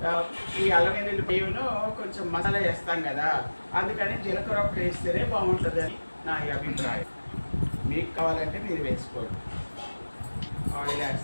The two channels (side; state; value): both; inverted; correlation -1.00